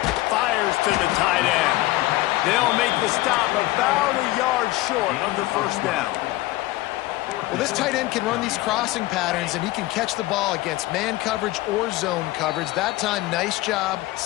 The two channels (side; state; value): right; quieter; 18.5 dB